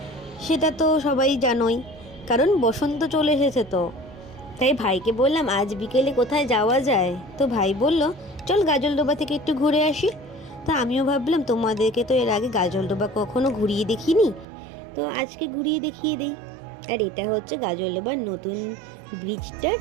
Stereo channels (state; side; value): drops out; left; at 14.5 s